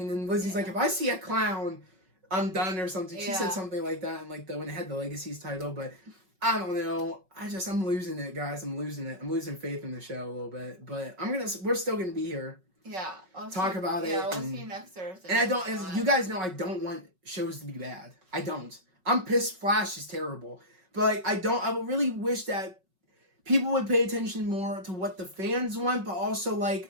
And then Lizzie's like, if I see a clown, I'm done or something. She said something like that, and like when it had the Legacies title, but. I don't know. I'm losing it, guys. I'm losing it. I'm losing faith in the show a little bit. But we're still gonna be here. Yeah. Talk about it. Yeah, we'll see you next Thursday. And you guys know I don't want shows to be bad. I don't. I'm pissed Flash is terrible. But I would really wish that people would pay attention more to what the fans want, but also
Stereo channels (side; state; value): left; late; 5.4 ms